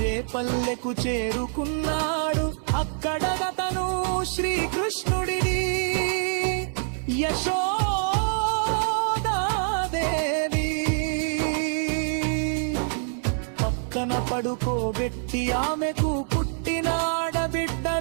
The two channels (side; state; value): left; silent; 61 dB below the other